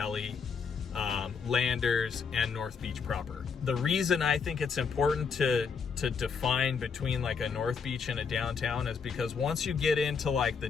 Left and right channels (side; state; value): right; quieter; 5.8 dB